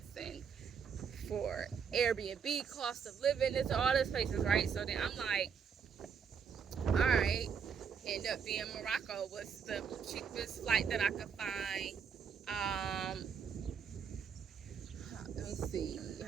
and for Airbnb, cost of living, it's all these places, right? So then I'm like, all right, end up being Morocco was the cheapest flight that I could find. Let me see,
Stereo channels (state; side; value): quieter; left; 6.7 dB